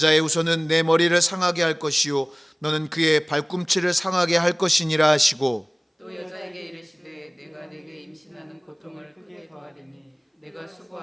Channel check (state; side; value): identical; both; correlation 1.00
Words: 후손은 내 머리를 상하게 할 것이요 너는 그의 발꿈치를 상하게 할 것이니라 하시고 또 여자에게 이르시되 내가 내게 임신하는 고통을 크게 더하리니 내가